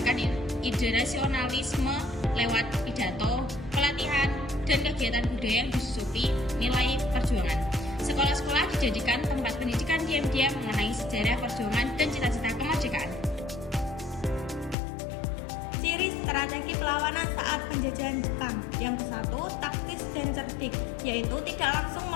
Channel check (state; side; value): drops out; right; at 14.8 s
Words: ide nasionalisme lewat pidato, pelatihan, dan kegiatan budaya yang disusupi nilai perjuangan. Sekolah-sekolah dijadikan tempat pendidikan diam-diam mengenai sejarah perjuangan dan cita-cita kemerdekaan. Ciri strategi perlawanan saat penjajahan Jepang. Yang ke-1, taktis dan cerdik, yaitu tidak langsung